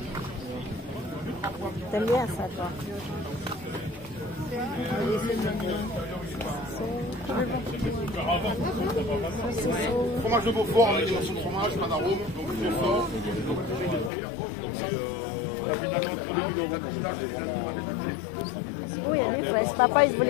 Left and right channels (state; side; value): drops out; right; at 14.1 s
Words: T'aimes bien ça, toi? Fromage de Beaufort avec des morceaux de fromage, pas d'arôme, donc très fort. Oui, reste pas, ils